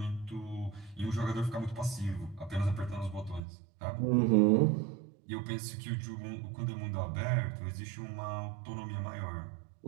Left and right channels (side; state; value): left; drops out; at 3.4 s